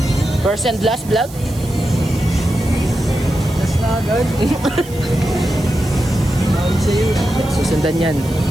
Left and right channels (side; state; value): right; noise; hiss, 18 dB below the sound